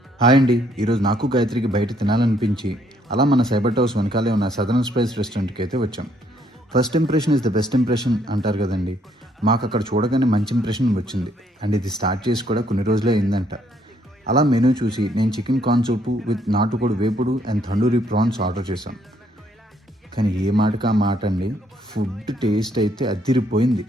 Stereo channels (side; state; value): both; normal; correlation 0.69